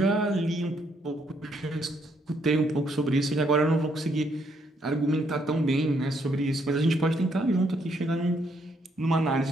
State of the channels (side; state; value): both; normal; correlation 0.72